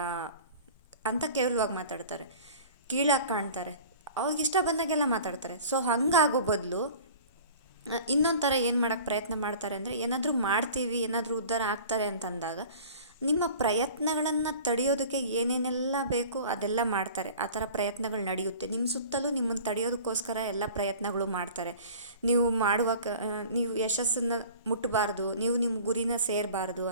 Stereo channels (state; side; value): inverted; both; correlation -0.43